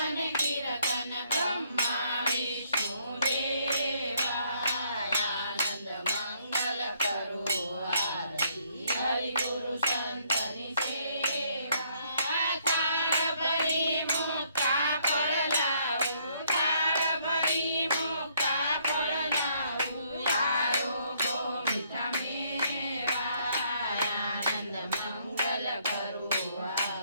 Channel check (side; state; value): both; inverted; correlation -0.68